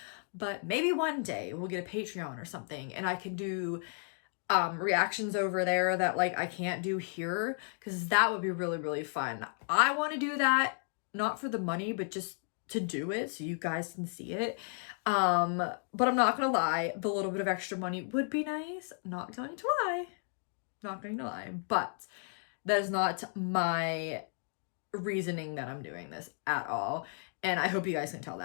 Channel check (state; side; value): silent; right; 55 dB below the other